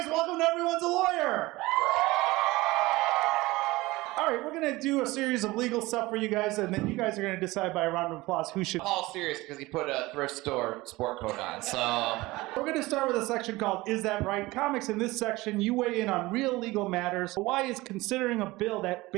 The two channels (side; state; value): left; quieter; 20.4 dB